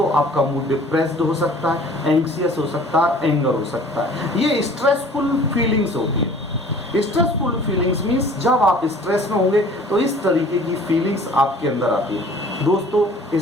आपका मूड डिप्रेस्ड हो सकता है, एंग्जियस हो सकता है, एंगर हो सकता है। ये स्ट्रेसफुल फीलिंग्स होती है। स्ट्रेसफुल फीलिंग्स मीन्स जब आप स्ट्रेस में होंगे तो इस तरीके की फीलिंग्स आपके अंदर आती है। दोस्तों,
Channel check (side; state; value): both; normal; correlation 0.49